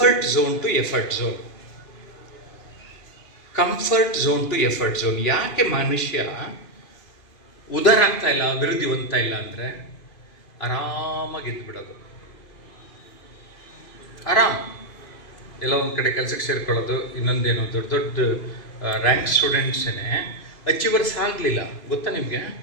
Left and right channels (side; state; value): right; late; 2.5 ms